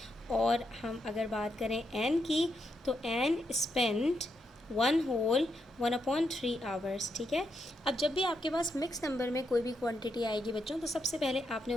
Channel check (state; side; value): normal; both; correlation 0.82